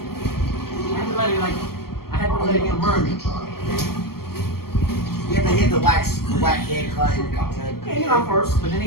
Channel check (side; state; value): right; late; 0.94 ms